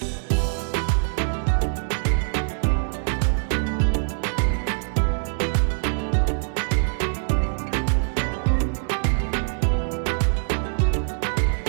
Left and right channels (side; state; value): left; silent; digital silence